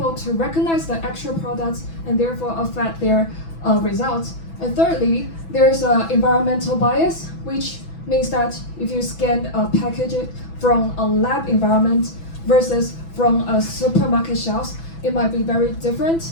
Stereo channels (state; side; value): late; right; 6.0 ms